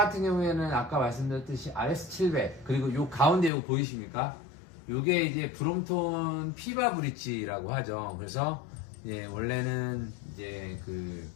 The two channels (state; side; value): drops out; right; at 3.5 s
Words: 경우에는 아까 말씀드렸듯이 RS700, 그리고 요 가운데 요거 보이십니까? 요게 이제 브롬톤 피바 브릿지라고 하죠. 그래서 원래는 이제 그